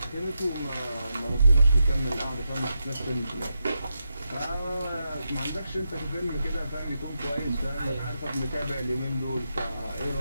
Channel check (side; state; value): both; inverted; correlation -0.86